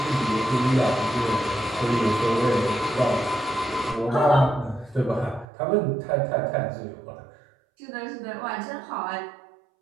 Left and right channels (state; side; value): drops out; left; at 5.5 s